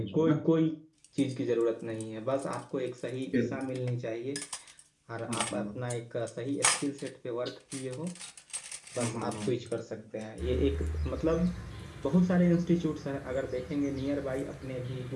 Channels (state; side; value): identical; both; correlation 1.00